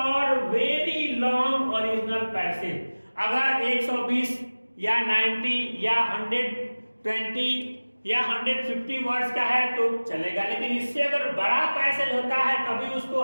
very long original passage. अगर 120 या 90 या 120 या 150 वर्ड्स का है तो चलेगा, लेकिन इससे अगर बड़ा पैसेज होता है तभी उसको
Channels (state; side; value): inverted; both; correlation -1.00